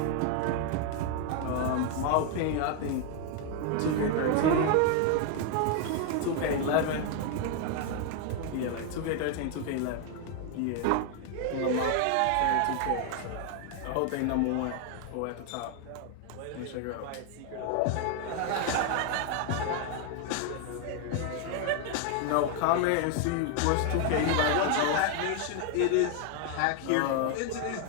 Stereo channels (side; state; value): both; different; correlation 0.00